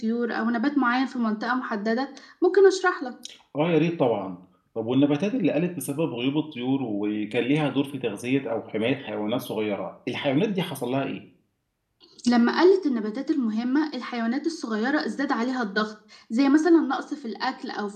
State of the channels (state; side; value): identical; both; correlation 1.00